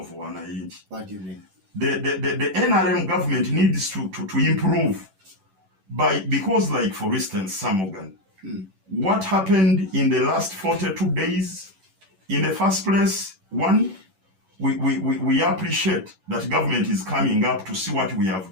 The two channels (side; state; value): left; late; 11 ms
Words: Wananchi. What do you mean? The NRM government needs to improve because, like, for instance, Sir Morgan, What happened in the last 42 days? In the first place, one, we appreciate that government is coming up to see what we have